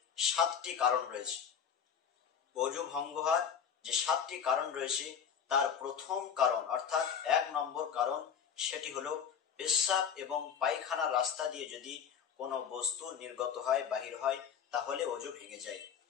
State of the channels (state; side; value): quieter; right; 7.6 dB